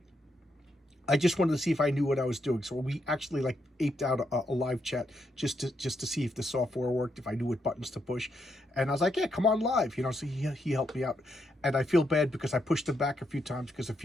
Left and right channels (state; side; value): normal; both; correlation 0.80